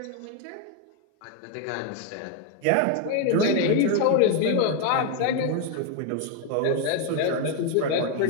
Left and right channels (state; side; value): different; both; correlation 0.01